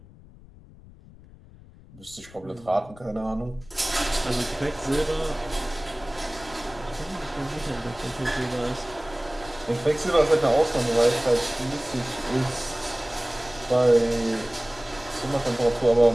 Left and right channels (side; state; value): left; noise; rumble, 21 dB below the sound